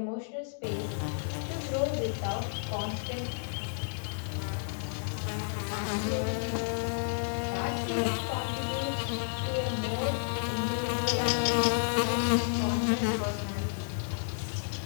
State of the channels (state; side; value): silent; right; digital silence